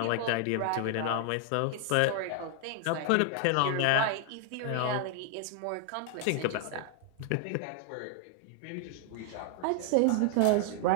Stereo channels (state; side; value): different; both; correlation 0.00